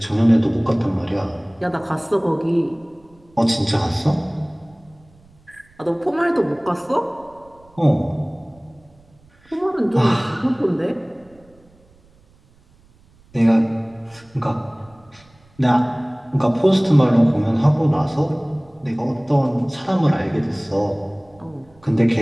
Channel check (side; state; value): right; noise; rumble, 30 dB below the sound